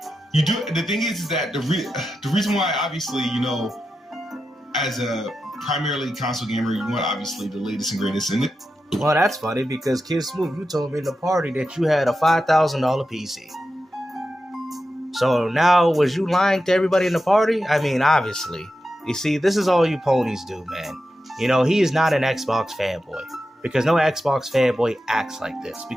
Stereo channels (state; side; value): normal; both; correlation 0.90